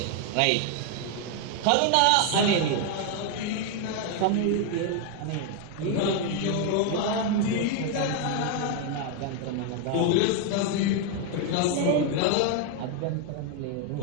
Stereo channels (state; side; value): different; both; correlation 0.01